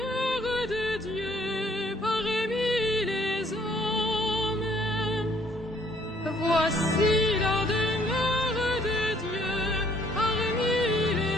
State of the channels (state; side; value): normal; both; correlation 0.63